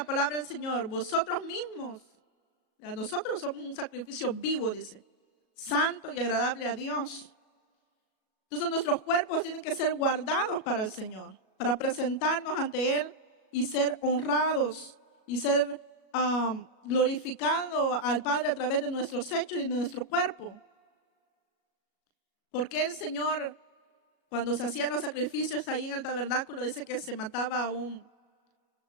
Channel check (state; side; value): late; right; 37 ms